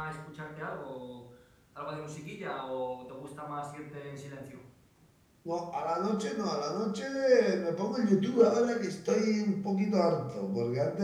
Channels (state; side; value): identical; both; correlation 1.00